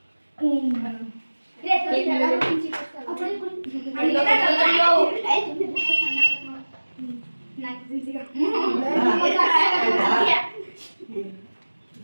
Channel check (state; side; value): inverted; both; correlation -1.00